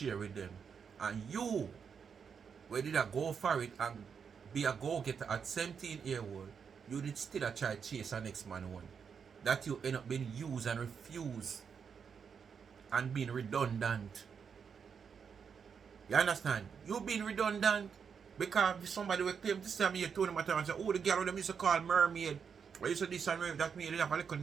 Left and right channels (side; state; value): left; quieter; 6.6 dB